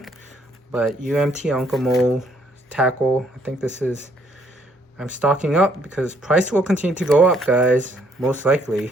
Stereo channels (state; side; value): normal; both; correlation 0.67